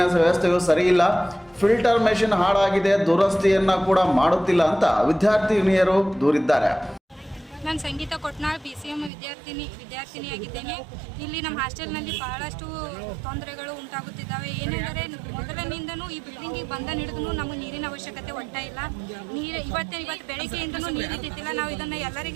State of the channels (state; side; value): drops out; left; at 9.1 s